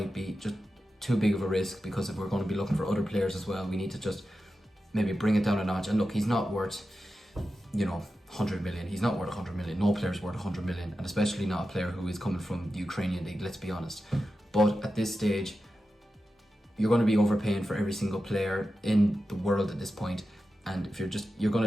be just too big of a risk, because if we're going to be looking for other players as well, we need to just maybe bring it down a notch. And look, he's not worth 100 million. He's not worth 100 million. No player's worth 100 million, and especially not a player who is coming from the Ukrainian league, let's be honest. But at this stage, you're going to be overpaying for every single player in the world at this point, and if you're just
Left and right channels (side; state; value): both; normal; correlation 0.91